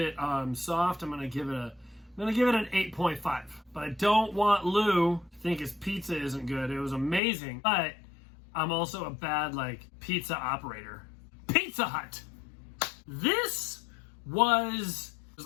soft, I'm gonna give it an 8.5. But I don't want Lou to think his pizza isn't good. It was amazing, but I'm also a bad pizza operator. Pizza Hut. This was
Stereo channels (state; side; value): drops out; right; at 7.2 s